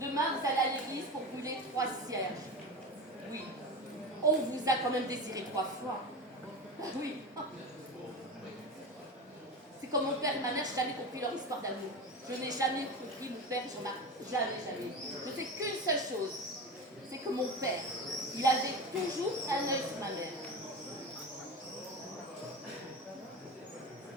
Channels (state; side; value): normal; both; correlation 0.26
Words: Demain vous allez à l'église pour brûler 3 cierges. Oui, on vous a quand même désiré 3 fois. Oui. C'est comme mon père et ma mère, je n'ai jamais compris leur histoire d'amour. Je n'ai jamais compris mon père, j'en ai jamais. Je sais qu'une seule chose, c'est que mon père, il avait toujours un œil sur ma mère.